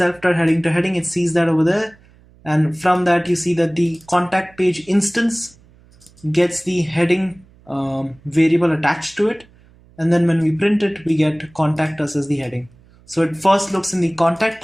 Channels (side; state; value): right; noise; hum, 28 dB below the sound